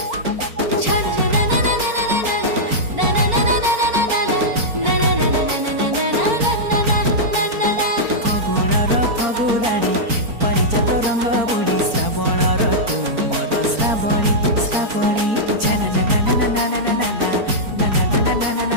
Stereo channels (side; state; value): left; late; 4.4 ms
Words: फगुणर फगुराणी परिजात रंग बुढ़ी श्रावणर तुमर श्रावणी श्रावणी